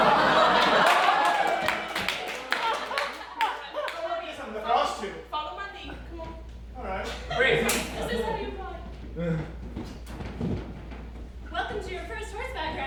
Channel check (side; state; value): both; identical; correlation 1.00